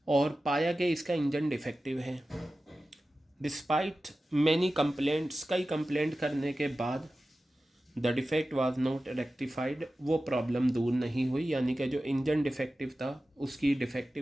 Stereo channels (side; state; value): both; normal; correlation 0.95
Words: और पाया कि इसका इंजन डिफेक्टिव है। डिस्पाइट मैनी कंप्लेंट्स, कई कंप्लेंट करने के बाद the defect was not rectified, वो प्रॉब्लम दूर नहीं हुई, यानी कि जो इंजन डिफेक्टिव था उसकी